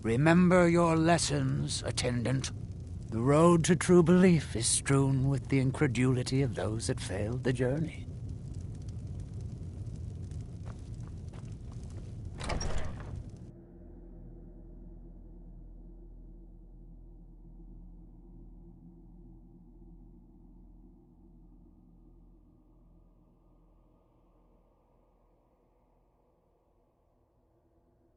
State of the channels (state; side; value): identical; both; correlation 1.00